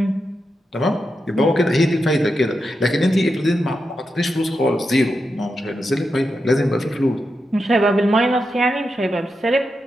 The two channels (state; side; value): normal; both; correlation 0.87